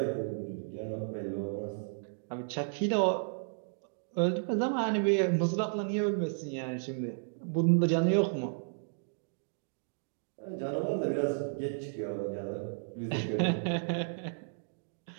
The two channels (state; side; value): silent; left; digital silence